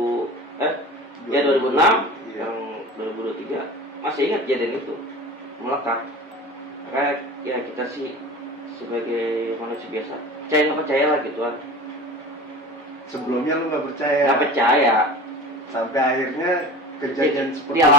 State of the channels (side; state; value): both; normal; correlation 0.36